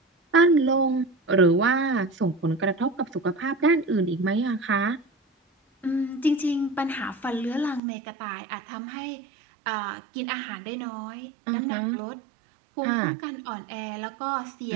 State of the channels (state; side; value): drops out; left; at 7.8 s